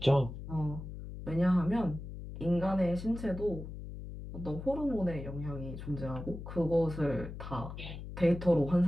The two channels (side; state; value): left; noise; hum, 10 dB below the sound